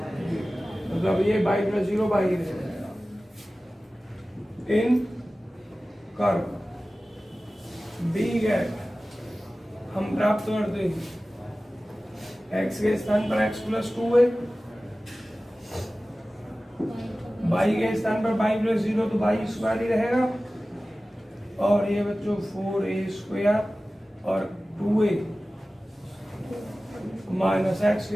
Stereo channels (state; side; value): normal; both; correlation 0.96